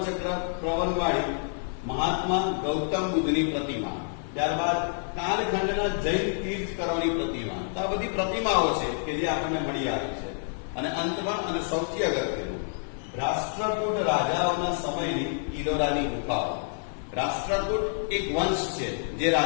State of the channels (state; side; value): silent; right; digital silence